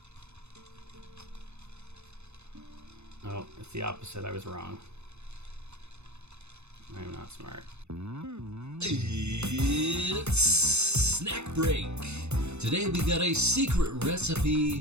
Oh, it's the opposite. I was wrong. I am not smart. It's snack break. Today we got a secret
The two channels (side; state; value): left; late; 0.81 ms